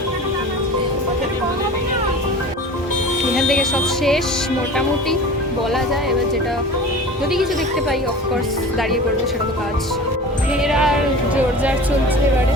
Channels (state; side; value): normal; both; correlation 0.37